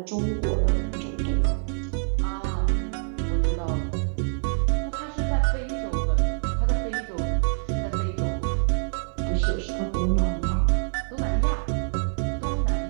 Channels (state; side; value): silent; left; digital silence